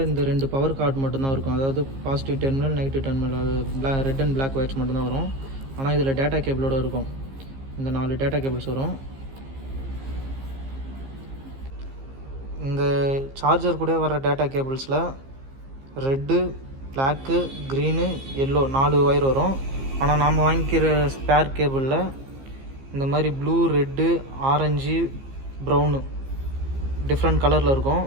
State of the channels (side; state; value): left; late; 15 ms